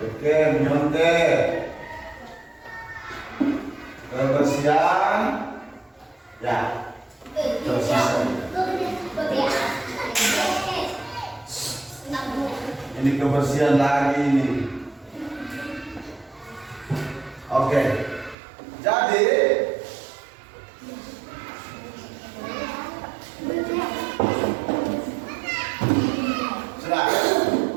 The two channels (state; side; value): drops out; left; at 18.4 s